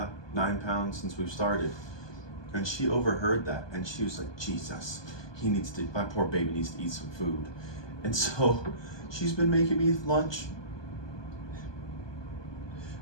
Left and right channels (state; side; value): late; right; 1.2 ms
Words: 9 pounds since we've started. And she overheard that, and she was like, Jesus, my poor baby needs to eat some food. And so she's been making me lunch.